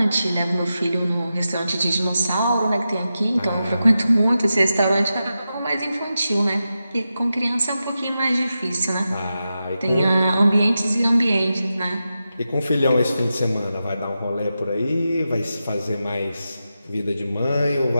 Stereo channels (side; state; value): both; inverted; correlation -0.90